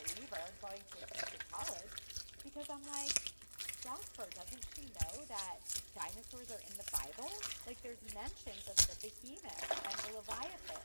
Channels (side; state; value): both; inverted; correlation -1.00